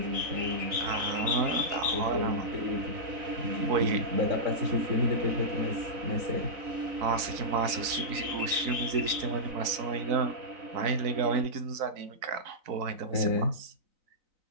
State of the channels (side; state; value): left; late; 3.9 ms